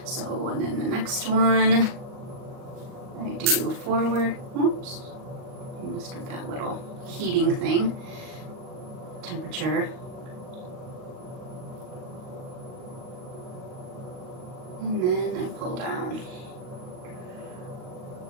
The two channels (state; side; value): late; left; 38 ms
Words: So, and then the next one, I do forward. Oops, I messed with that little heating thing. Temperature. And then I pull down.